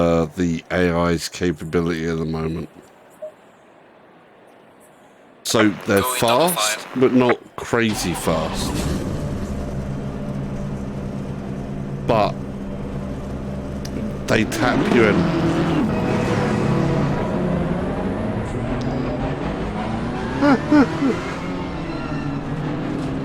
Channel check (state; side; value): identical; both; correlation 1.00